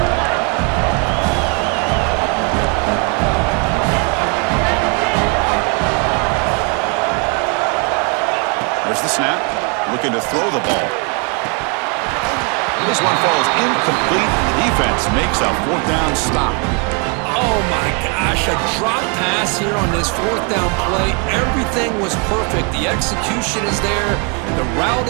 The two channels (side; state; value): left; quieter; 35.7 dB